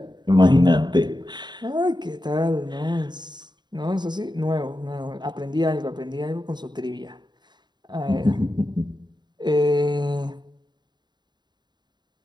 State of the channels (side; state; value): left; late; 0.21 ms